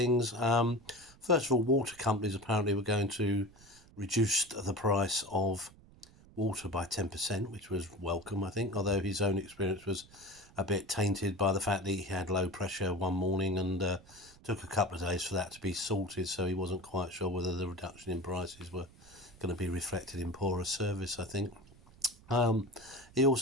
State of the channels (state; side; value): noise; right; rumble, 24 dB below the sound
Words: First of all, water companies apparently were going to reduce the price of water by 10%, which was welcome, I think, although his own experience was a bit tainted by the fact that he had low pressure one morning and took a couple of days for that to be sorted, so he wasn't quite sure whether the reduction in prices were going to be reflected in poorer service, I think. He